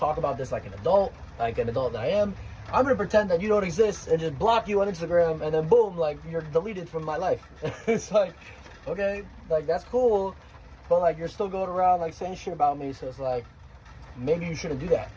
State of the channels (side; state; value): both; identical; correlation 1.00